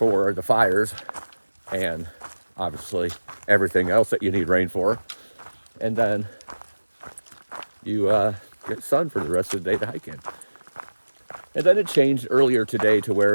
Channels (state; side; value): inverted; both; correlation -1.00